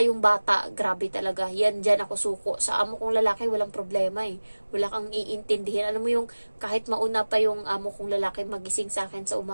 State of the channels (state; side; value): inverted; both; correlation -1.00